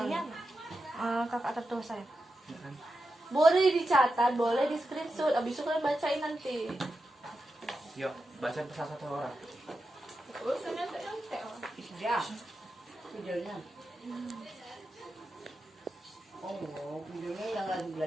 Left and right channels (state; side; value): normal; both; correlation 0.89